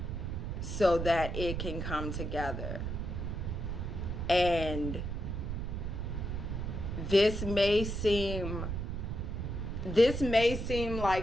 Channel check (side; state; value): right; noise; rumble, 3 dB below the sound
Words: so that it can come together. And this may seem